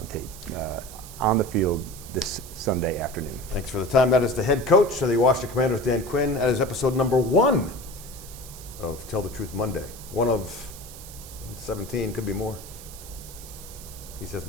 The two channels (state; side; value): noise; right; hiss, 15 dB below the sound